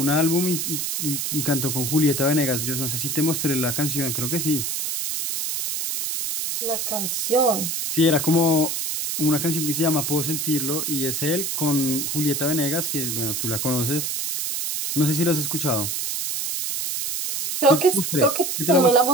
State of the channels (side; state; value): right; noise; hiss, 2 dB below the sound